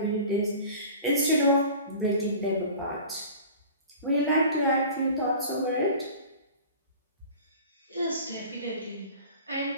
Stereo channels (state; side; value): inverted; both; correlation -0.40